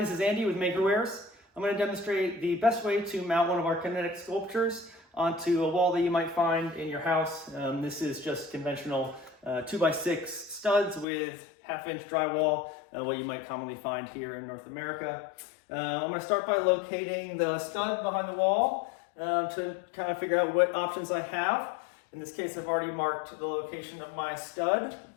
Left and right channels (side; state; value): right; drops out; at 11.1 s